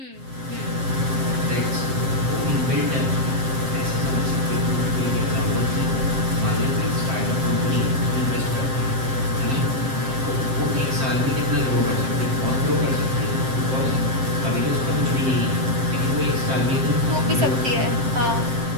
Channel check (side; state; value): left; late; 7.6 ms